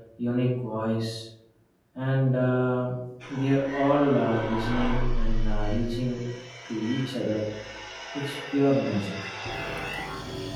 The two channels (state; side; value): identical; both; correlation 1.00